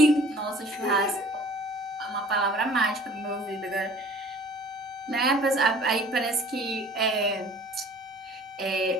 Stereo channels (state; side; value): normal; both; correlation 0.50